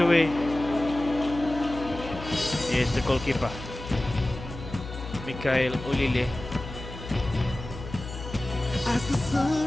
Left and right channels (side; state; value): left; noise; hum, 11 dB below the sound